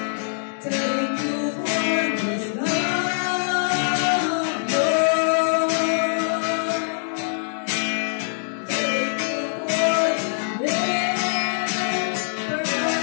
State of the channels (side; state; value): right; silent; digital silence